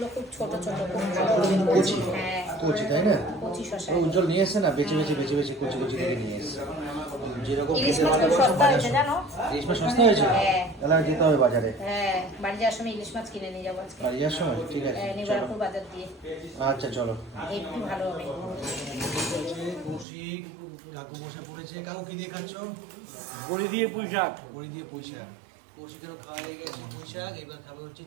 খুব ছোট ছোট, খুব ভালো। কচি হ্যাঁ, কচি তাই না? কচি শশা। উজ্জ্বল নিয়ে এসছে না, বেছে বেছে বেছে বেছে কচি কচি করে নিয়ে এসছে। যেরকম ইলিশ খেতে মাছ খুব ভালোবাসো সস্তা হয়েছে জানো? ইলিশ মাছ সস্তা হয়েছে? হ্যাঁ। তাহলে আর যেতে হবে বাজারে। হ্যাঁ, বাড়ি যাওয়ার সময় ইলিশ মাছ কিনে নিয়ে যাবো আজকে। বাড়ি যাওয়ার সময়? ঠিক আছে, নিবারপুর বাজার দিয়ে। আচ্ছা চলো। একটু ভালো হবে। কৌশিক কাকু বসে পড়েছে। কাকু কি দিয়ে খাচ্ছ? বড়ি দিয়ে পুঁই শাক। বড়ি দিয়ে পুঁই শাক। কৌশিকেরও খাওয়া হয়ে গেছে পুঁই শাক। এবার খাবে হচ্ছে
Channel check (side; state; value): left; drops out; at 20.1 s